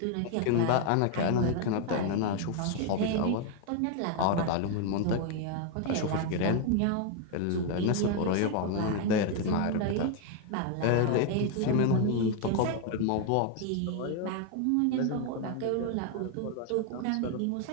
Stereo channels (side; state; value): both; different; correlation 0.01